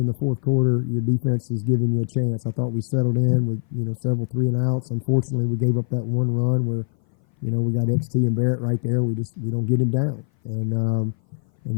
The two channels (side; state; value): right; silent; 58 dB below the other